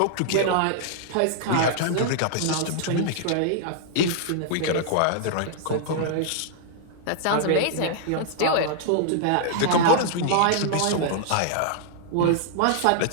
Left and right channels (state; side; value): different; both; correlation -0.01